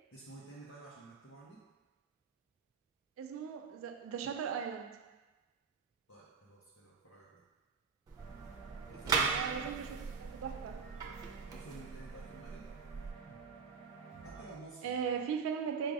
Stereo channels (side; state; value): left; quieter; 5.4 dB